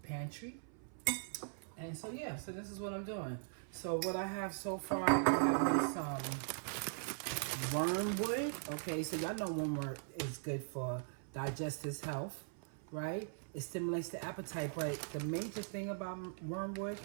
pantry, and so yeah, so this is what I'm doing. So what I have so far, I have some wormwood. Okay, so y'all know wormwood is good for digestive health, right? It stimulates the appetite, but the major thing about wormwood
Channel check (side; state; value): left; silent; 51 dB below the other